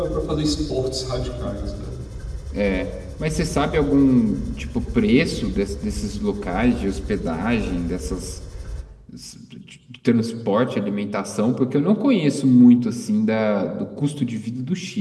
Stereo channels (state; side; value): identical; both; correlation 1.00